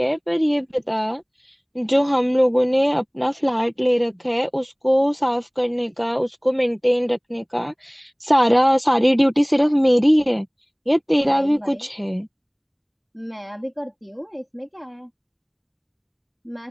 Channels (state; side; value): identical; both; correlation 1.00